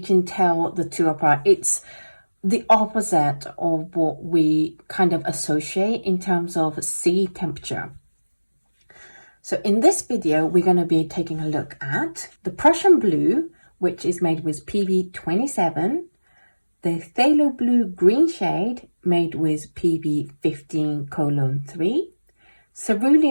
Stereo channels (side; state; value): both; inverted; correlation -1.00